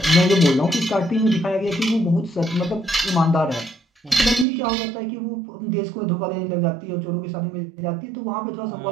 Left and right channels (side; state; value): left; drops out; at 4.5 s